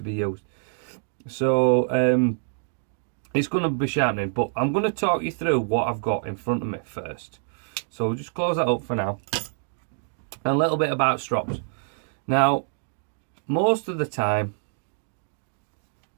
be used. So it's going to be sharpening, but I'm going to talk you through what I've got in front of me first. So we'll just close that up for now. And a little bit about strops. Now, most of the time,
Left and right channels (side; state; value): left; silent; digital silence